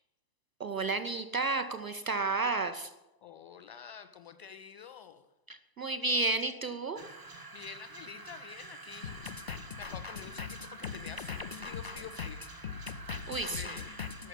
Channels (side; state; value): left; late; 1.0 ms